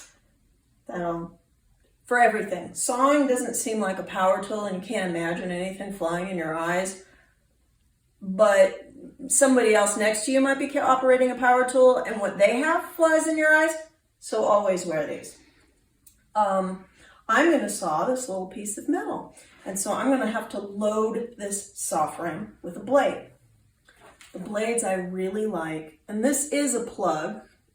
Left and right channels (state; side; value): identical; both; correlation 1.00